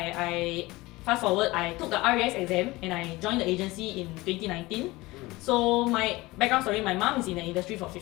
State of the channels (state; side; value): quieter; right; 20.7 dB